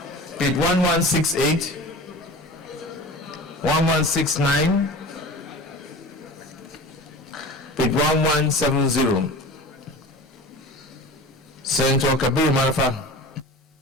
page 1168, 1169, page 1170. Senator Kabir Marfa.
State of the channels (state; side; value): normal; both; correlation 0.36